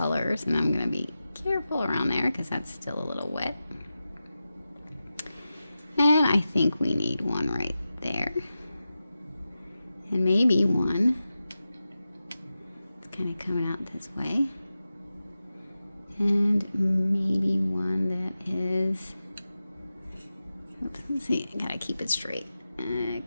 and I'm gonna be careful around there because that's still a little wet. And I think we need one right there. And maybe one, it's kind of coming out this way. And maybe one that is, oops, let's see, I gotta keep it straight.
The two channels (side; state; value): both; inverted; correlation -0.93